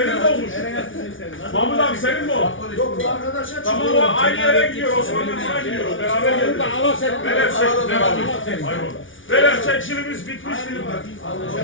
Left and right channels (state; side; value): late; right; 0.57 ms